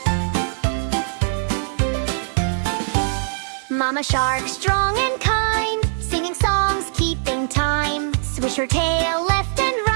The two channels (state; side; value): silent; left; 59 dB below the other